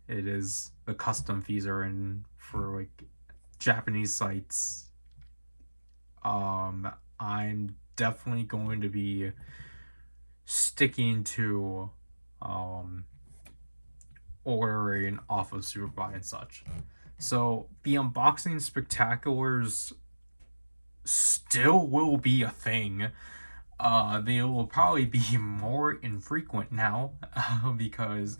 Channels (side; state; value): both; inverted; correlation -1.00